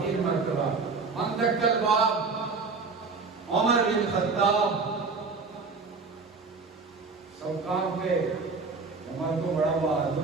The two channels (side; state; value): left; quieter; 4.3 dB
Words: مرتبہ. من دق الباب عمر بن خطاب. سب کام پہ عمر کو بڑا